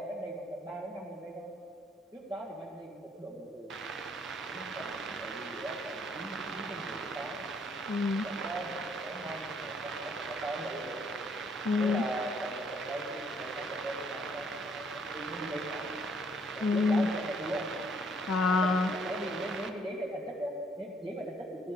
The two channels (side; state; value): both; normal; correlation 0.65